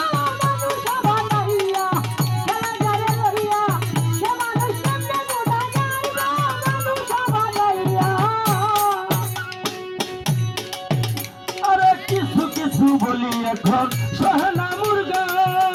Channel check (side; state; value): both; identical; correlation 1.00